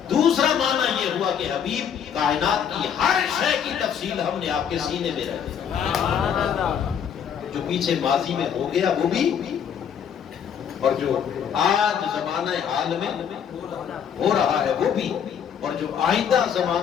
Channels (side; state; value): right; quieter; 8.1 dB